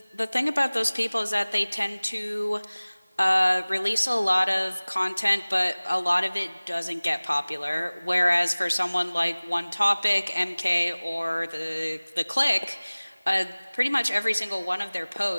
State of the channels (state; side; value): inverted; both; correlation -1.00